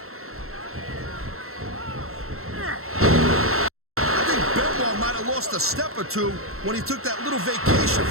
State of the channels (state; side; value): late; left; 0.62 ms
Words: I think Benoit might have lost a step or two when he took that little vacation